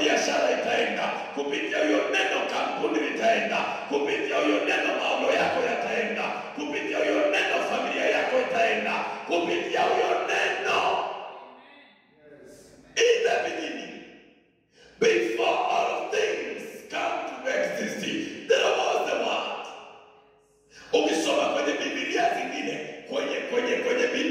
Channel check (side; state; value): both; identical; correlation 1.00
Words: itaenda. Kupitia huyo neno kampuni litaenda. Kupitia huyo neno maono yako yataenda. Kupitia huyo neno familia yako itaenda. Kupitia huyo neno. In the beginning, before all things come to exist, there was the word. Ukisoma kwenye Biblia zingine, kwenye